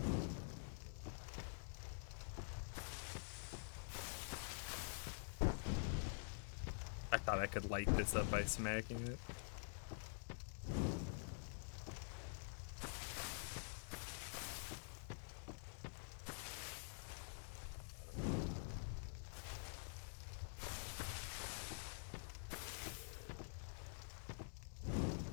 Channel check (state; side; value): silent; right; digital silence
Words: I thought I could light this up by smacking it.